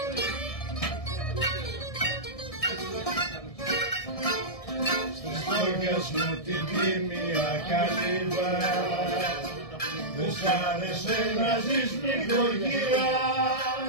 Στις στόχες μου την τίμια καλύβα δεν σ' άρεσε να ζεις νοικοκυρά.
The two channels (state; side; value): late; right; 1.6 ms